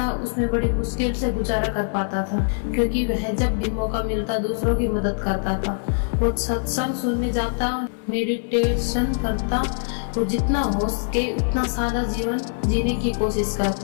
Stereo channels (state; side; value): silent; right; 63 dB below the other